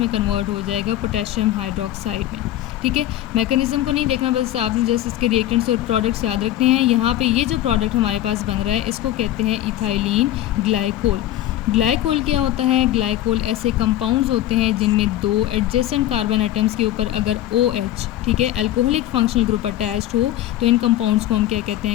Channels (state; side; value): quieter; right; 13.5 dB